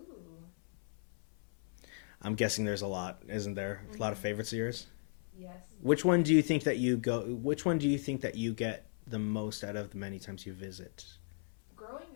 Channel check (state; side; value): silent; right; 54 dB below the other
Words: I'm guessing there's a lot, isn't there? A lot of favorites of yours. Yes. Which one do you think that you get the most out of the many times you visit? Growing